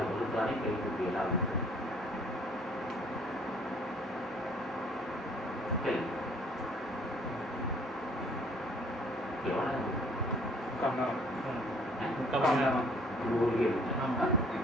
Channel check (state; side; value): normal; both; correlation 0.59